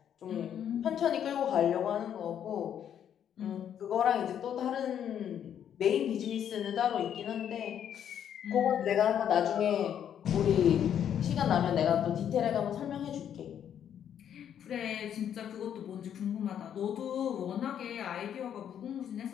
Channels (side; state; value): right; quieter; 9.3 dB